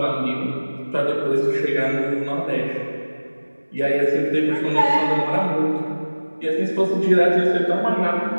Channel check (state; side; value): inverted; both; correlation -1.00